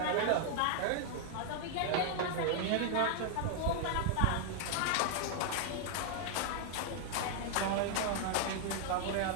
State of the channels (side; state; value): both; different; correlation 0.00